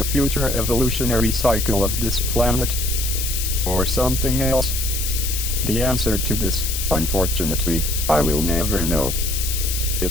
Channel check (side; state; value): left; noise; hiss, 3 dB below the sound